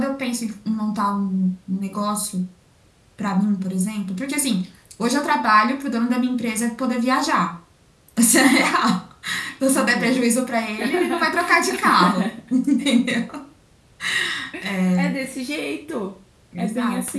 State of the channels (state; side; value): identical; both; correlation 1.00